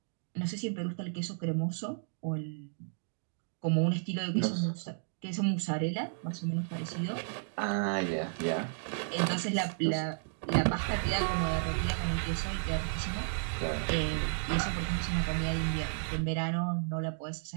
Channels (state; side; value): silent; left; digital silence